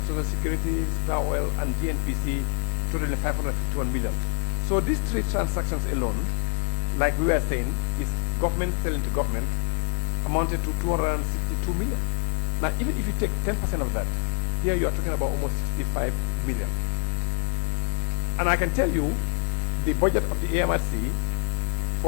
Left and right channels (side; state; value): right; silent; digital silence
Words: Social Security, Star Oil, and GNPC, totaling 551 million. So these three transactions alone, like we were saying, is government selling to government, amounted to 262 million. Now, even if you take 10% of that, here you are talking about almost 65 million. And I can tell you, the budget of the AMRC